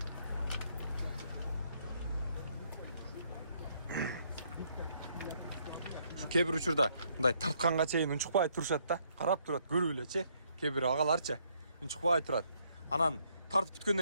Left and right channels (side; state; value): both; inverted; correlation -0.70